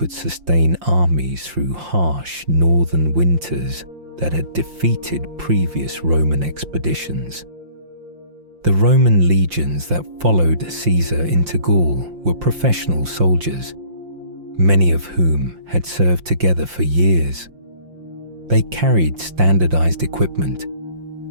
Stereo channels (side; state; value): left; late; 5.7 ms